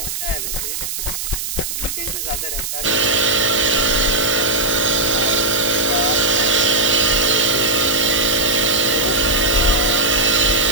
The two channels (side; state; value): right; noise; hiss, 5 dB below the sound